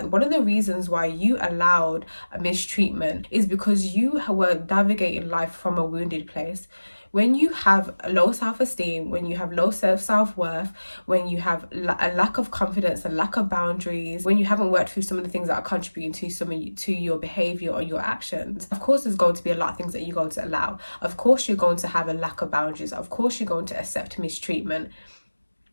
one of the reasons why you allowed a mistreatment is because you were navigating life from a wounded place. When you have low self-esteem, when you have low self-worth, when you have a lack of confidence, a lack of boundaries, when you haven't worked through some of the things that are contributing to your behavior or your actions, of course there's going to be a lot of things that you're going to allow. Of course you're going to have a lack of boundaries. Of course you're going to accept mistreatment.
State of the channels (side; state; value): both; inverted; correlation -1.00